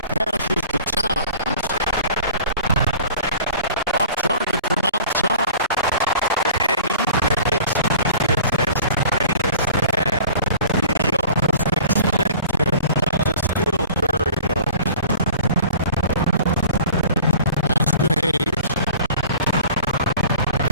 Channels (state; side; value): inverted; both; correlation -0.44